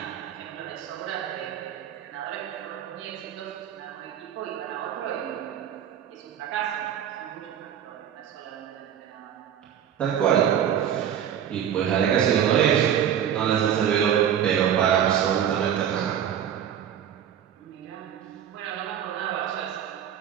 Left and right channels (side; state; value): left; quieter; 9.5 dB